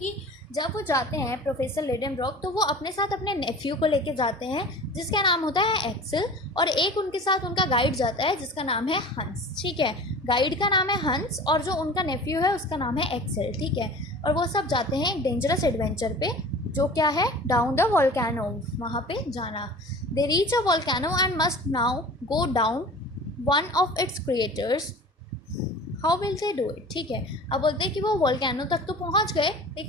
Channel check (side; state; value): both; normal; correlation 0.40